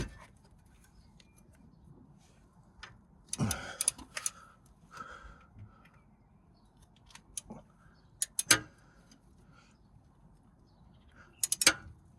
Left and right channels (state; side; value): identical; both; correlation 1.00